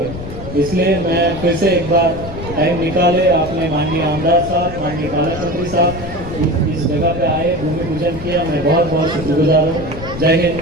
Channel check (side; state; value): left; noise; rumble, 10 dB below the sound